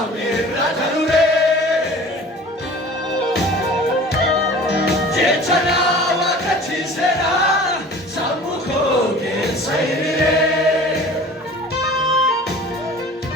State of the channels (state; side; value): normal; both; correlation 0.43